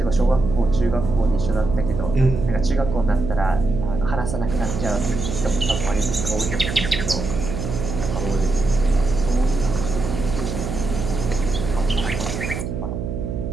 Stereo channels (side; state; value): right; noise; hum, 4 dB below the sound